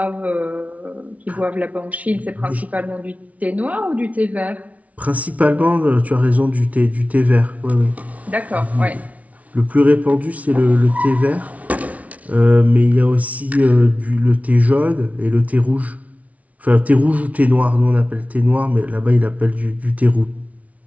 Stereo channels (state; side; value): late; left; 0.068 ms